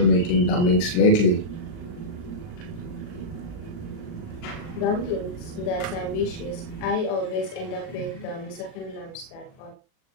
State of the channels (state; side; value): late; right; 39 ms